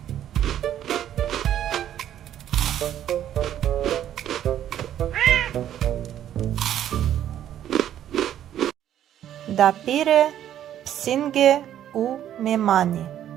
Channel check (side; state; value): left; quieter; 11.0 dB